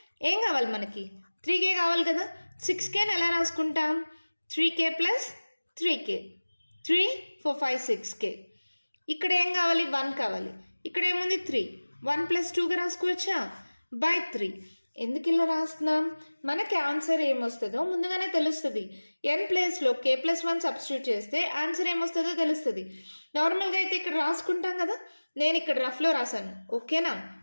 ఏం కావాలి మనకి 3k కావాలి కదా 6kని ఎలా రాసుకుంటాం 3k ప్లస్ 3k 3 4 5 6k. ఇక్కడ ఏం కావాలి 1 కావాలి ఇక్కడ ఏముంది 3 1 ప్లస్ 2గా రాసుకోవచ్చా బై 3. ఎందుకు ఇలా రాస్తున్నాం మనకి ఆన్సర్ ఏమొస్తుందో ముందుగానే తెలుస్తుంది. n ప్లేస్లో k ప్లస్ 1 సబ్స్టిట్యూట్ చేస్తే ఆన్సర్ ఏమొస్తుందో తెలుస్తుంది. నార్మల్గా అయితే ఇక్కడ రాసుకుంటాం కదా నేను ఇక్కడ రఫ్లో రాశాను ఓకేనా.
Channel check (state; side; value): inverted; both; correlation -1.00